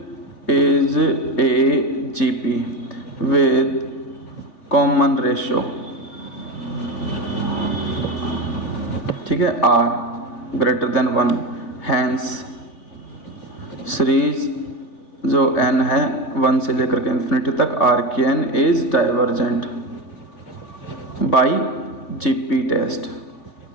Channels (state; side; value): late; right; 3.4 ms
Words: is a GP with common ratio, ठीक है, r greater than 1। Hence series जो n है 1 से लेकर के इन्फिनिटी तक r की n is divergent by GP test,